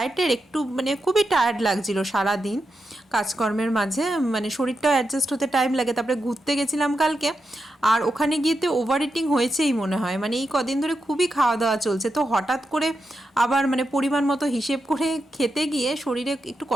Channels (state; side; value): normal; both; correlation 0.87